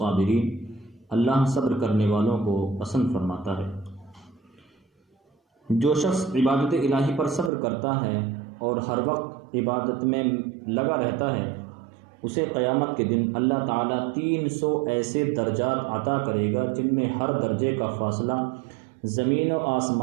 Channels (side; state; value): left; drops out; at 7.5 s